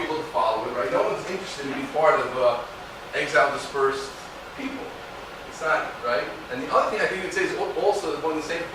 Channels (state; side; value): identical; both; correlation 1.00